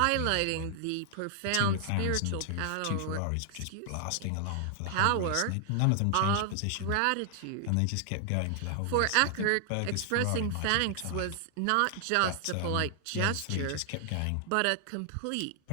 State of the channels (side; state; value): both; different; correlation 0.00